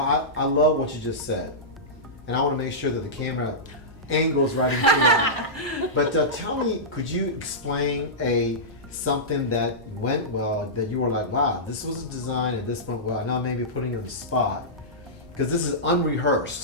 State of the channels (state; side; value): normal; both; correlation -0.15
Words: I love what you just said. And I want to make sure that the camera angles right into that. But tell me, could you explain something that went well, that you were like, wow, this was a design and this went well. Now maybe putting you on the spot. Because this is